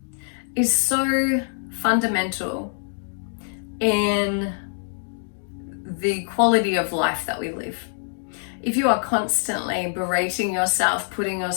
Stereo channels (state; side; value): silent; right; 62 dB below the other